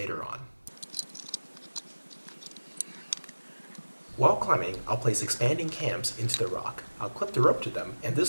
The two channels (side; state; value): both; inverted; correlation -1.00